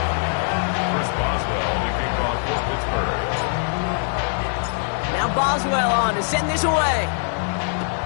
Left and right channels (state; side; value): silent; right; 59 dB below the other